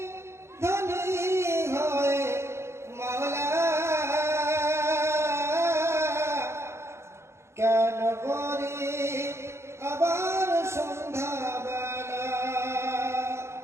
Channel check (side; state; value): left; late; 0.13 ms